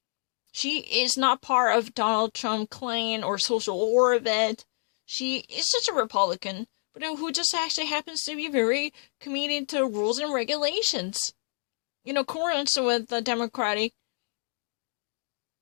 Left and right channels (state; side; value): silent; right; 59 dB below the other